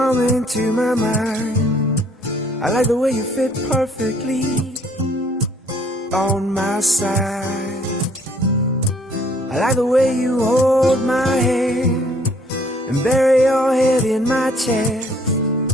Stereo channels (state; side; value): normal; both; correlation 0.62